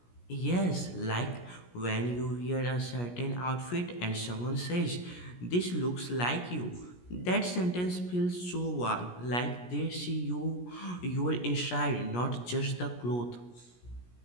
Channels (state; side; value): late; right; 17 ms